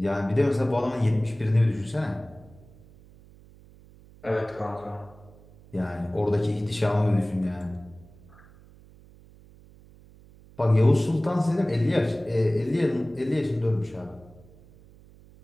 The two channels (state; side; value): noise; right; hum, 24 dB below the sound